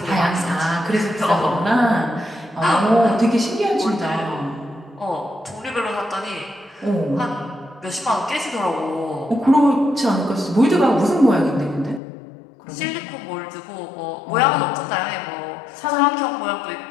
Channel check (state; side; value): drops out; right; at 12.0 s